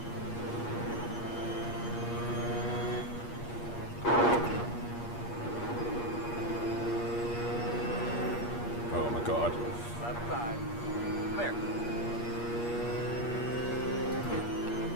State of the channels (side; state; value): right; late; 8.5 ms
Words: Oh my god. Left side. Clear.